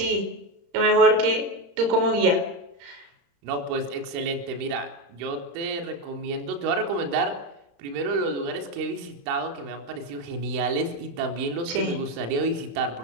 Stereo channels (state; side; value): late; left; 35 ms